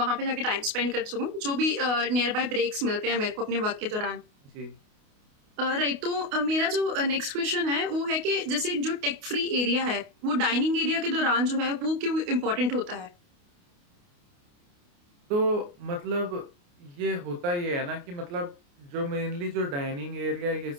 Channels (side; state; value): left; late; 28 ms